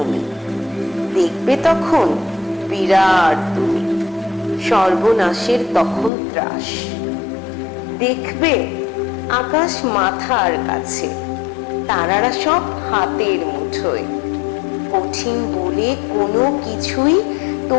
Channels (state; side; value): drops out; right; at 6.1 s